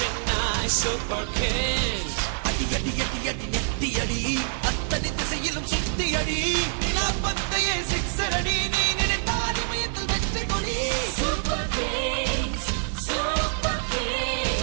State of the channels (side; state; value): left; silent; 61 dB below the other